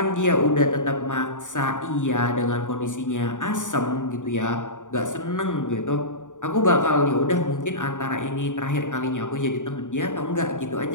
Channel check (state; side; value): late; right; 0.86 ms